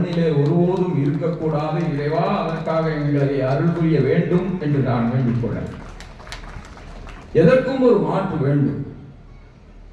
ஒருபோதும் இருக்கக்கூடாது. இறைவா, அதற்காக எங்களை அருள் புரிய வேண்டும் என்று நான் வேண்டிக் கொள்ள. எதற்கும் ஒரு மாற்று வேண்டும்.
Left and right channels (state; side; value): identical; both; correlation 1.00